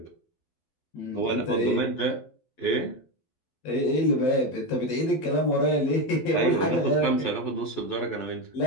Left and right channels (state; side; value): late; right; 12 ms